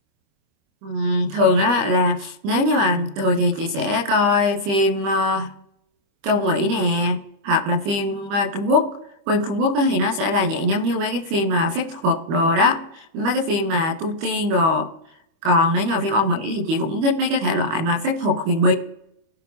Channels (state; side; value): late; left; 25 ms